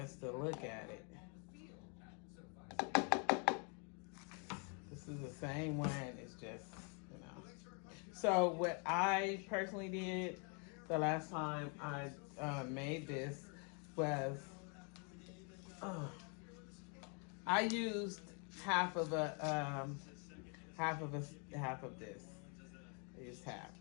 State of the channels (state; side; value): quieter; right; 37.6 dB